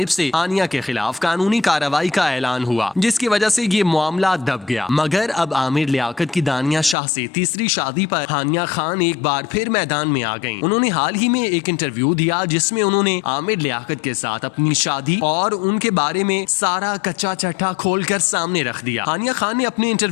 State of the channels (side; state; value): right; drops out; at 7.0 s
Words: से हानिया के खिलाफ कानूनी कार्रवाई का ऐलान हुआ, जिसकी वजह से ये मामला दब गया। मगर अब आमिर लियाकत की दानिया शाह से तीसरी शादी पर हानिया खान एक बार फिर मैदान में आ गईं। उन्होंने हाल ही में एक इंटरव्यू दिया, जिसमें उन्होंने आमिर लियाकत के साथ अपनी शादी और उनके बारे में सारा कच्चा चट्टा खोलकर सामने रख दिया। हानिया खान ने अपने